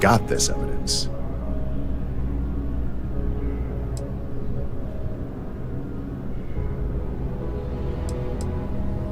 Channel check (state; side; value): identical; both; correlation 1.00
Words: got this evidence.